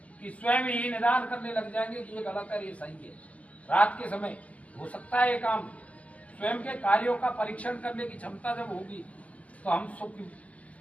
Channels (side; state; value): right; late; 0.067 ms